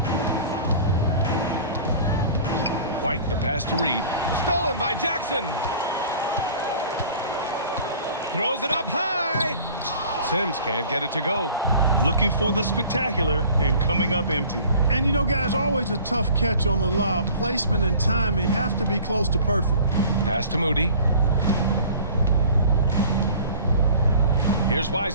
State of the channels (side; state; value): both; inverted; correlation -0.46